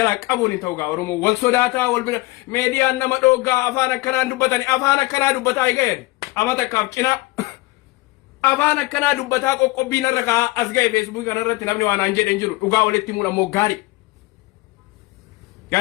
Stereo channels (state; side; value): quieter; right; 21.5 dB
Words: qabuni tawga oromo wal sodata wal media nama doga afana kana dubbatani afana kana dubbata igayen amata kapcina afana kana dubbata qoqqobi naraka asgay facebook kana ratti namni wana njeden jiru duga waletti mula mo gari